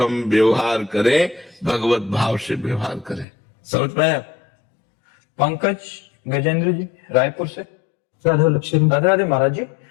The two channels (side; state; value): right; drops out; at 3.2 s